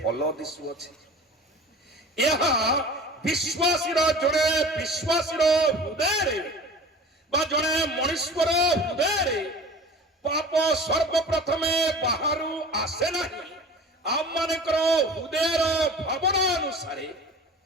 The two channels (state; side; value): normal; both; correlation 0.39